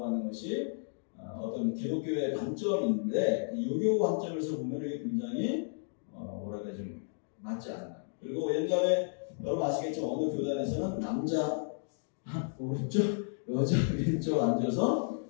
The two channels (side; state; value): right; silent; digital silence